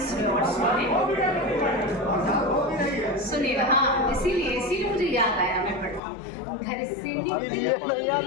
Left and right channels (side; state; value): right; drops out; at 6.0 s